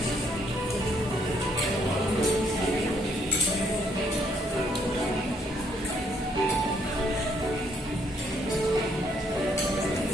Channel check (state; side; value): normal; both; correlation 0.69